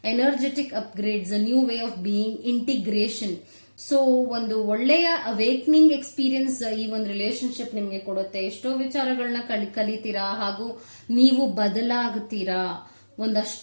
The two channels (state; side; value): inverted; both; correlation -1.00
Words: energetic upgrades, a new way of being, integration. So ಒಂದು ಒಳ್ಳೆಯ ಅವೇಕ್ನಿಂಗ್ ಎಕ್ಸ್ಪೀರಿಯನ್ಸ್ ಈ ಒಂದು ರಿಲೇಶನ್ಶಿಪ್ ನಿಮ್ಗೆ ಕೊಡುತ್ತೆ. ಎಷ್ಟೋ ವಿಚಾರಗಳನ್ನ ಕಲಿತೀರಾ ಹಾಗೂ ನೀವು ಬದಲಾಗುತ್ತೀರಾ.